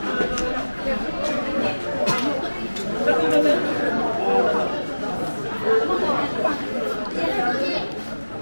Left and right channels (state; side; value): inverted; both; correlation -1.00